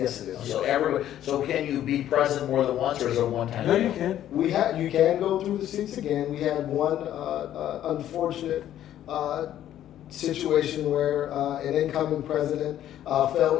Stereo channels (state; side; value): quieter; right; 11.8 dB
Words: it is. So can you be president more than once, or is it a one-time? No, deal? you can. You can go through the seats again. We had one unfortunate situation where an incoming president